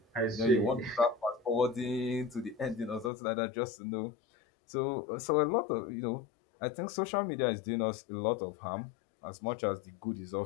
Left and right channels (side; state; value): right; drops out; at 3.1 s